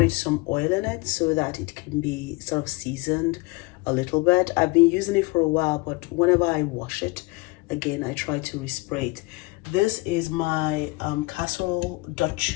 some oil in it so that it can be sort of seasoned a little bit. I've been using it for a while, but whenever I wash it, again, I try to respray it. This is my casserole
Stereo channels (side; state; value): right; quieter; 24.8 dB